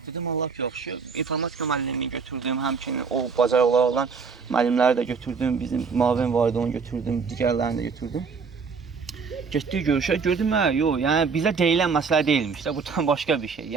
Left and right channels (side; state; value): left; quieter; 5.3 dB